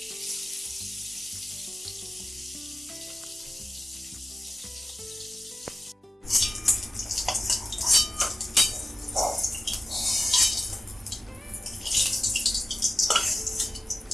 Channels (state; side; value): normal; both; correlation 0.94